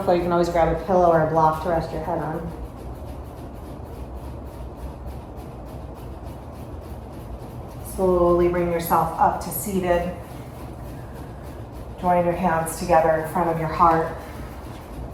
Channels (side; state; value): both; identical; correlation 1.00